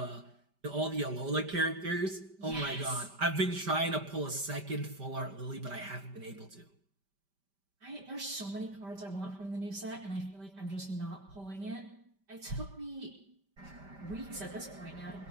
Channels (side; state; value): left; late; 5.1 ms